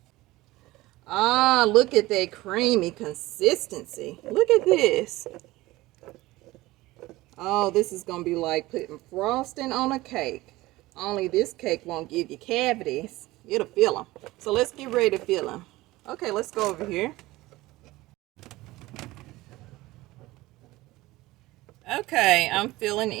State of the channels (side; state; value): left; quieter; 18.8 dB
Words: Ah, look at that creamy consistency. Look at this. Oh, this is going to be like putting frosting on a cake. Only this cake won't give you cavities. It'll fill them. So let's get ready to fill them. Okay, let's go over here. Okay, I'm filling